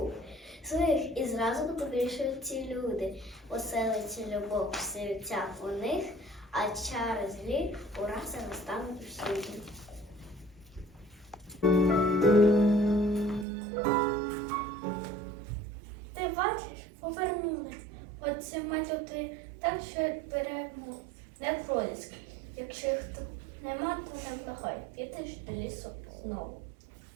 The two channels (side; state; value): left; drops out; at 13.5 s